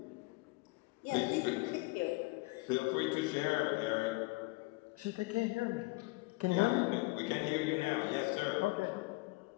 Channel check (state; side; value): quieter; right; 24.3 dB